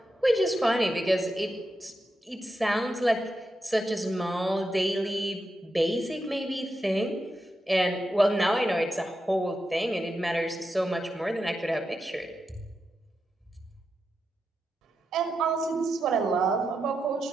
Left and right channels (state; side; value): normal; both; correlation 0.87